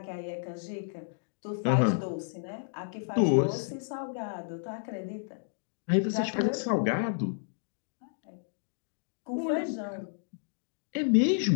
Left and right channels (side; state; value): right; silent; digital silence